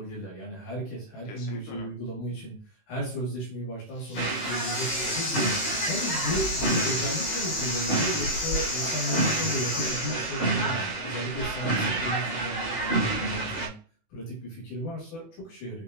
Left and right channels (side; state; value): right; late; 18 ms